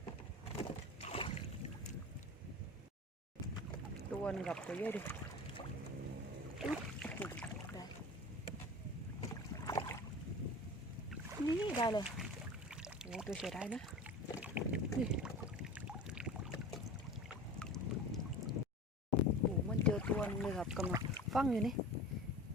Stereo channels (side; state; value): both; normal; correlation 0.35